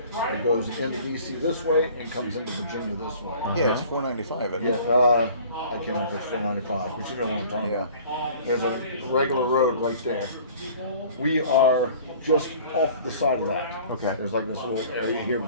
It goes into DC this way and comes into Virginia this way. Yeah, it's 495. Isn't Yeah, it? I can't remember if it's 495, but you know what I'm talking Yeah. about. There's a regular road right there. We are just off the side of that. Okay. There's like this little area here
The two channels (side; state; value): both; inverted; correlation -0.49